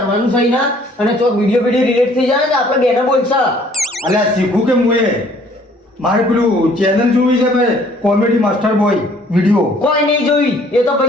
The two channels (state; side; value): normal; both; correlation 0.59